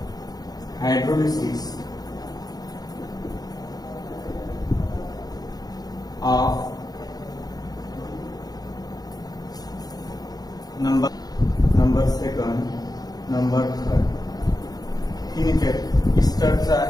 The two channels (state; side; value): late; right; 0.19 ms